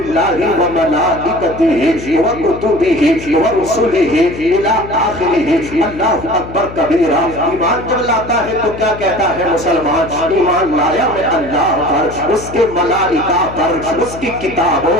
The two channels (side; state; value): left; noise; hum, 13 dB below the sound